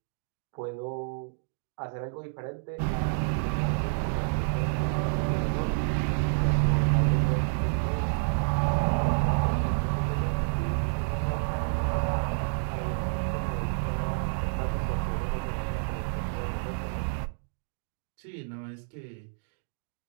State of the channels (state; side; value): silent; left; digital silence